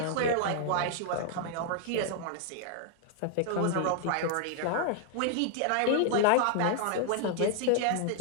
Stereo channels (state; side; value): different; both; correlation -0.01